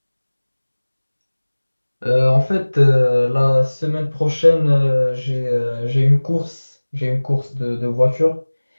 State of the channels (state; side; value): inverted; both; correlation -1.00